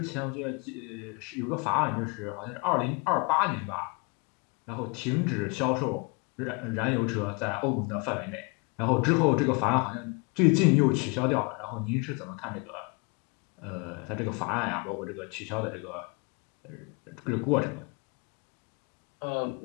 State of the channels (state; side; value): quieter; right; 31.2 dB